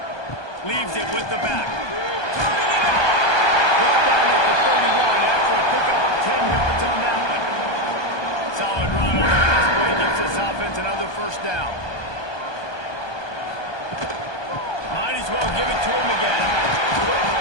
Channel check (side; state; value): right; late; 1.2 ms